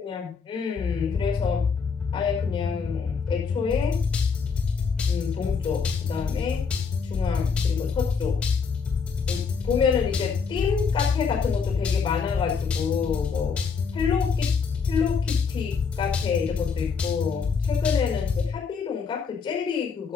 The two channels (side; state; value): right; quieter; 5.6 dB